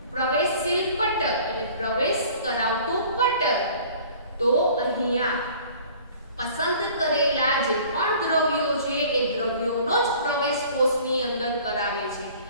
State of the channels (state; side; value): inverted; both; correlation -0.49